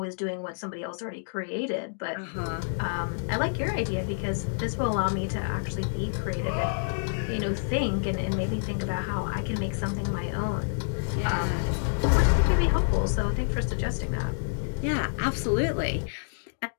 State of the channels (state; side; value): silent; right; digital silence